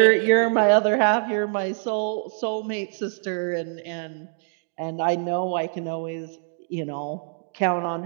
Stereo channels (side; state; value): left; silent; digital silence